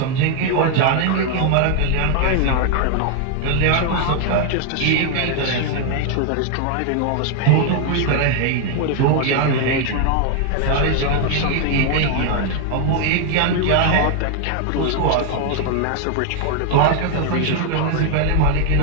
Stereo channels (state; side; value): different; both; correlation 0.00